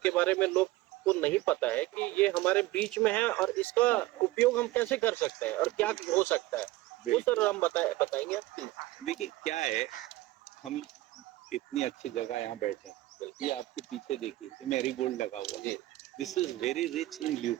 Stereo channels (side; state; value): left; quieter; 17.6 dB